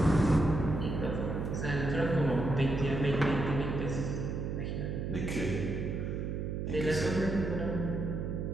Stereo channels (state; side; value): noise; right; hum, 3 dB below the sound